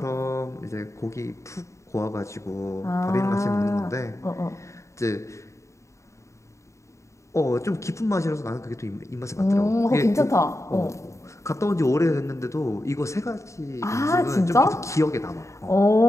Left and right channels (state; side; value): late; right; 0.14 ms